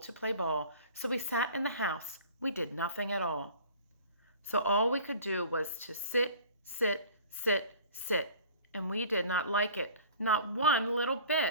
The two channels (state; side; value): inverted; both; correlation -0.46